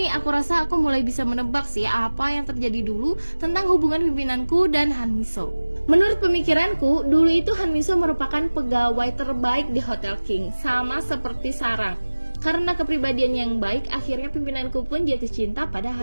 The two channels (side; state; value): both; inverted; correlation -1.00